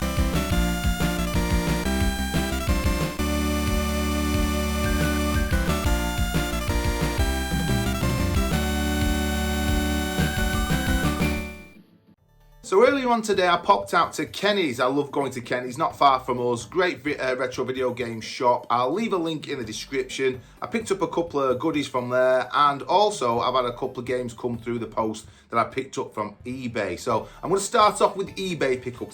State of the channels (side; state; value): both; identical; correlation 1.00